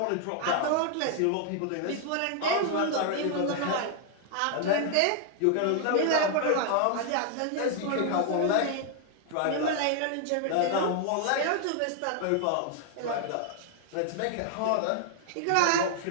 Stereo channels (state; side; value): different; both; correlation 0.00